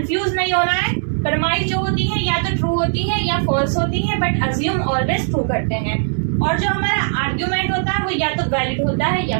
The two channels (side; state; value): left; silent; digital silence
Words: नहीं होना है। प्रमाइस जो होती है या तो ट्रू होती है या फॉल्स होती है, बट अज्यूम ऑलवेज ट्रू करते हैं। और जो हमारा आर्ग्यूमेंट होता है वो या तो वैलिड होता है